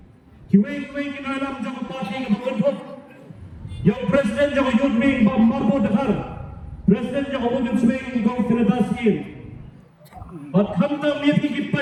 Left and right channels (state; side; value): identical; both; correlation 1.00